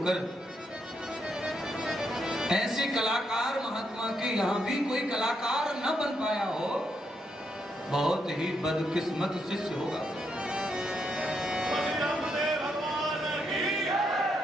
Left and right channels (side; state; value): both; normal; correlation 0.79